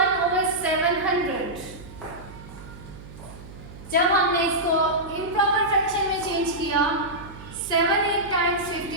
over 700। जब हमने इसको improper fraction में चेंज किया, 7 8 times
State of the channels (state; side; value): noise; right; hum, 16 dB below the sound